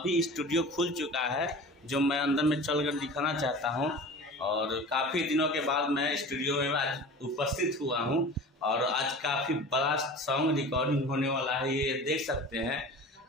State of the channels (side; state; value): both; normal; correlation 0.37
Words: स्टूडियो खुल चुका है, जो मैं अंदर में चलकर दिखाना चाहता हूं। और काफ़ी दिनों के बाद मैं स्टूडियो में आज उपस्थित हुआ हूं और आज काफ़ी बड़ा सॉन्ग रिकॉर्डिंग होने वाला है। ये देख सकते हैं